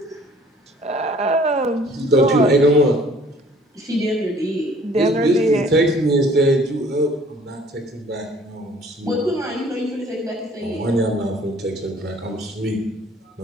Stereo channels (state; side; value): normal; both; correlation 0.55